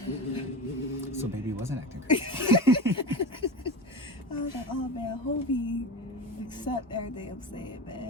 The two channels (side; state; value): both; normal; correlation 0.27